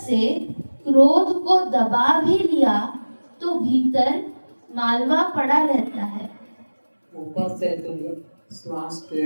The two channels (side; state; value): both; inverted; correlation -1.00